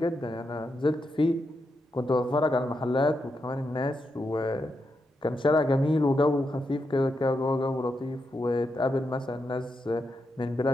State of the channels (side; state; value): both; normal; correlation 0.84